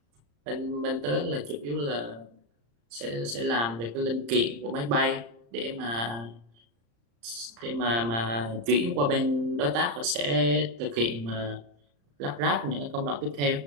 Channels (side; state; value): left; late; 35 ms